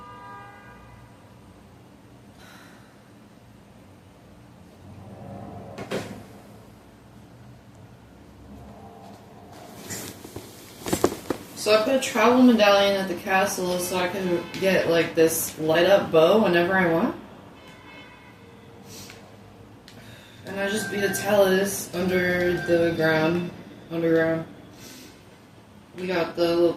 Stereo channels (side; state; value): both; identical; correlation 1.00